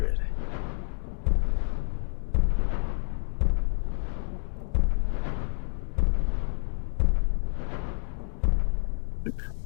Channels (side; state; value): right; silent; 59 dB below the other